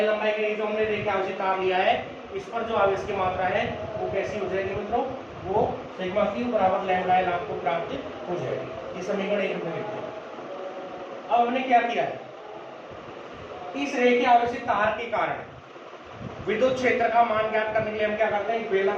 लंबाई के लिए जो हमने रेखीय आवेशित तार लिया है, इस पर जो आवेश की मात्रा है वो कैसी हो जाएगी मित्रों, वो सिग्मा क्यू बराबर लैम्डा एल आपको प्राप्त हो जाएगी। ये समीकरण 1 में लिखते हैं। अब हमने क्या किया है, इस रेखीय आवेशित तार के कारण विद्युत क्षेत्र का मान ज्ञात करने के लिए हम क्या करते हैं,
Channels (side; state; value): both; identical; correlation 1.00